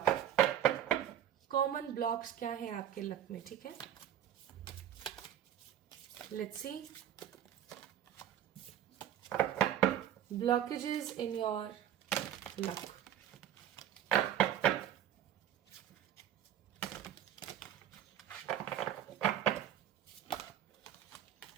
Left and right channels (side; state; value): left; quieter; 10.4 dB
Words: Common blocks क्या है आपके लक में? ठीक है, let's C. Blockages in your luck.